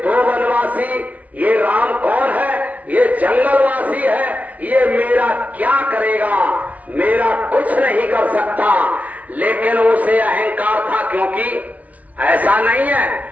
दो वनवासी, ये राम कौन है, ये जंगलवासी है, ये मेरा क्या करेगा, मेरा कुछ नहीं कर सकता। लेकिन उसे अहंकार था, क्योंकि ऐसा नहीं है,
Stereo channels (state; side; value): late; left; 0.070 ms